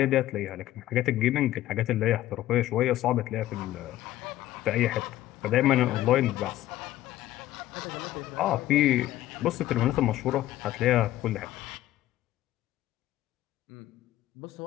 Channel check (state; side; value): quieter; right; 14.4 dB